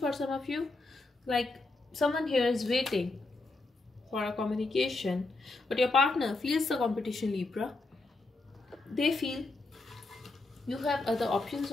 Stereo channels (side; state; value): right; quieter; 3.2 dB